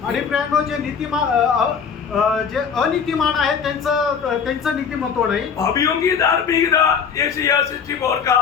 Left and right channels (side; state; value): right; quieter; 6.5 dB